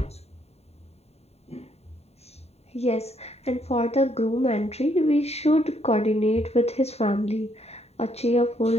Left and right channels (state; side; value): late; right; 0.30 ms